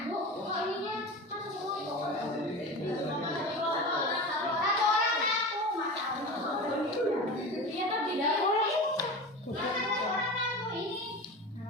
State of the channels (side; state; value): both; normal; correlation 0.29